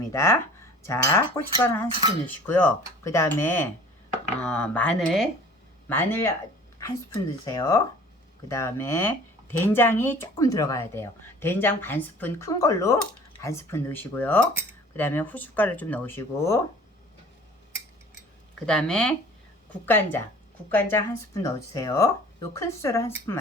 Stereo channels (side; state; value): both; normal; correlation 0.47